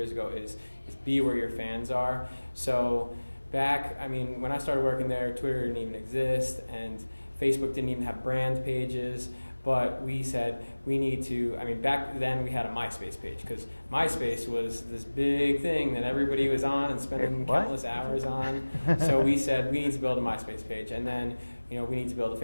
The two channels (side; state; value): both; inverted; correlation -1.00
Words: ago is be where your fans are. So when I started working there, Twitter didn't even exist, and Facebook didn't even have brand pages. But we said we need to, back then we had a MySpace page because MySpace was this big thing that everybody was on and spending countless hours on. So we said we need to build a MySpace page, and then we need to build a